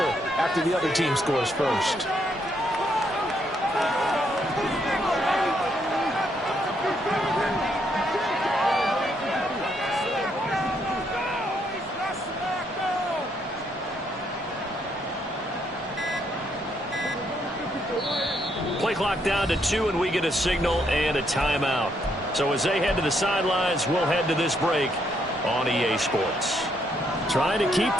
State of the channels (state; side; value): normal; both; correlation 0.74